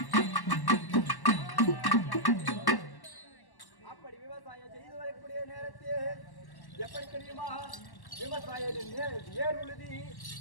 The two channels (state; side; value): late; right; 1.1 ms